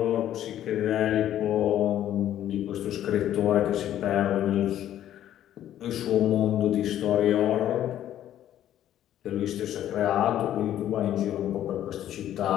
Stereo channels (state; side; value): quieter; right; 11.7 dB